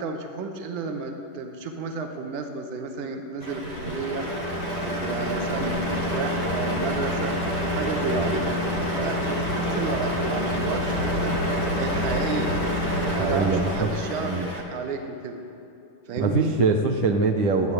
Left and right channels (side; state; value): right; late; 10 ms